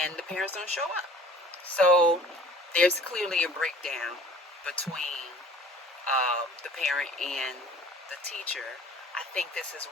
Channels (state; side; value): normal; both; correlation 0.48